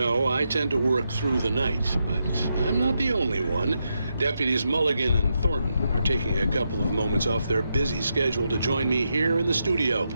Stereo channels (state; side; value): inverted; both; correlation -0.84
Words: I tend to work through the night, but I'm not the only one. Deputies Mulligan and Thornton are taking a couple of moments off their busy schedule to join me here in the studio.